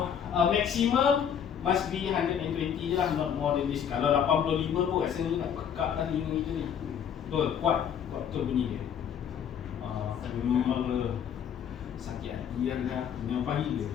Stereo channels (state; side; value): quieter; right; 8.3 dB